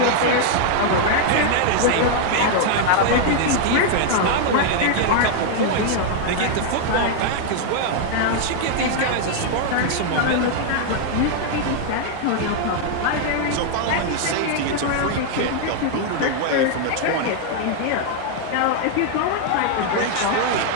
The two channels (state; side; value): different; both; correlation 0.00